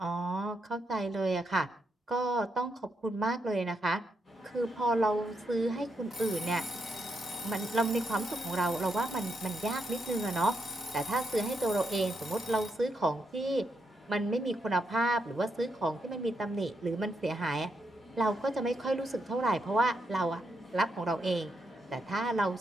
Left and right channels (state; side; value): normal; both; correlation 0.81